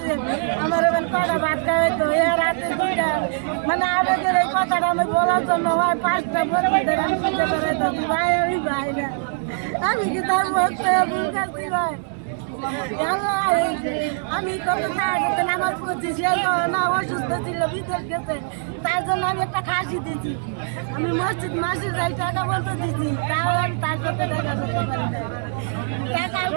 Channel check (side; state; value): left; silent; digital silence